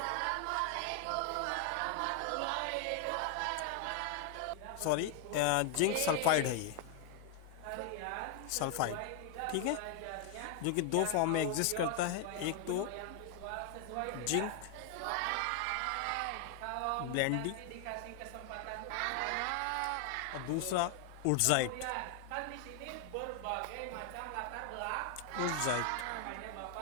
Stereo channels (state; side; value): different; both; correlation 0.00